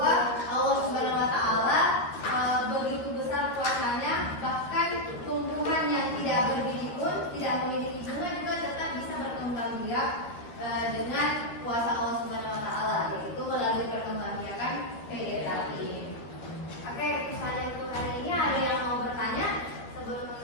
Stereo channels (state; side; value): late; right; 13 ms